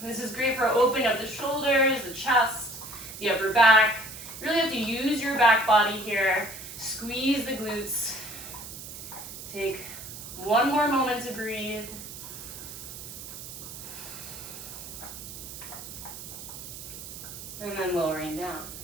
This is great for opening up the shoulders, the chest, the upper back. You really have to use your back body here. Squeeze the glutes. Take one more moment to breathe. And then lowering down.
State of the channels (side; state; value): right; noise; hiss, 11 dB below the sound